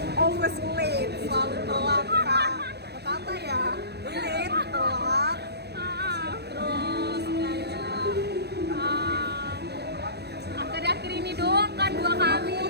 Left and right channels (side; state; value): left; late; 0.48 ms